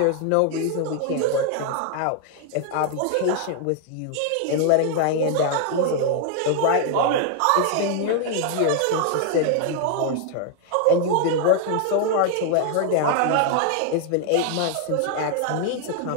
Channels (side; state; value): both; different; correlation 0.00